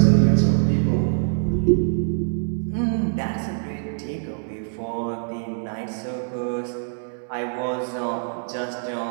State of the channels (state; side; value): silent; left; digital silence